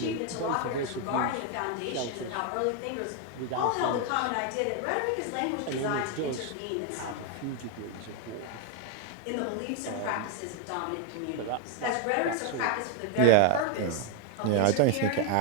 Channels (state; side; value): different; both; correlation 0.01